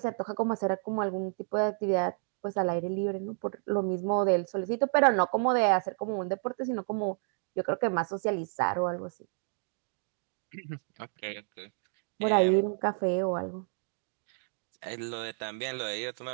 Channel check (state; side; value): silent; left; digital silence